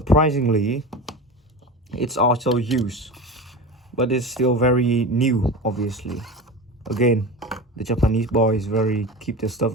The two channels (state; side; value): normal; both; correlation 0.28